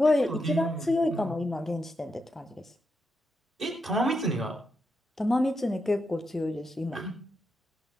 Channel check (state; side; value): normal; both; correlation 0.84